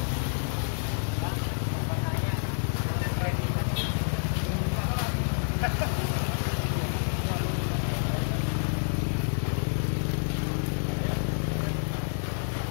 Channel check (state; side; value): silent; right; 59 dB below the other